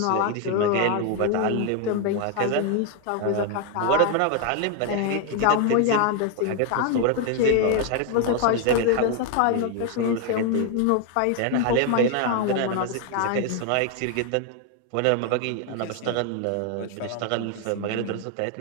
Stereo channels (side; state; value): both; different; correlation 0.01